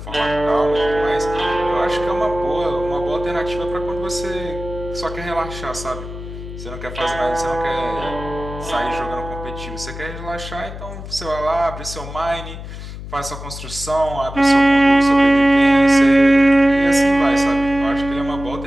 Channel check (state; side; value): noise; left; hum, 11 dB below the sound